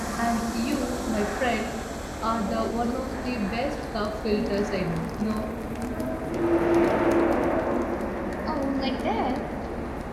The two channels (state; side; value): identical; both; correlation 1.00